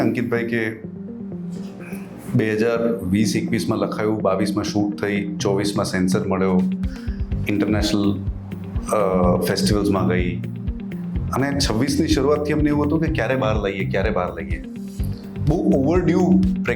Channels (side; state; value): both; identical; correlation 1.00